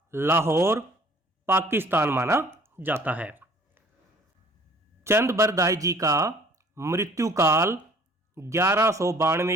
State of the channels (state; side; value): normal; both; correlation 0.54